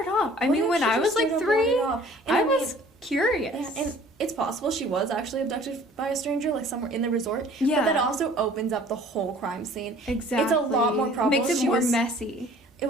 off? I mean, when I was, like, 3, I was curious. Yeah, and it's possible she was actually abducted by a stranger, like, somewhere in the resort. Yeah. But that also opens up the whole crime scene. Exactly. It's a lot more probable. Makes it more messy.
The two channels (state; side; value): normal; both; correlation 0.51